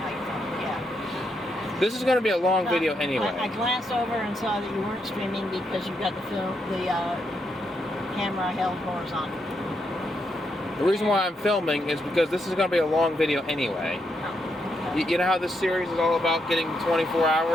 you're filming, yeah. This is going to be a long video anyway. I glanced over and saw that you weren't streaming because you've got the camera held horizontal. The reason why I'm filming is because this is going to be a long video anyway. You know how this series is all about getting 24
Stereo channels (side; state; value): both; normal; correlation 0.80